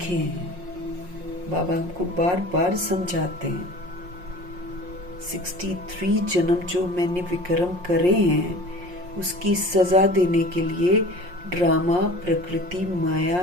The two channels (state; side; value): late; left; 5.6 ms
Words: हैं, बाबा हमको बार बार समझाते हैं। 63 जन्म जो मैंने विक्रम करे हैं उसकी सजा देने के लिए ड्रामा, प्रकृति, माया,